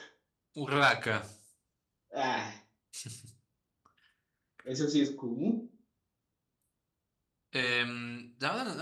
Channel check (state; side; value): identical; both; correlation 1.00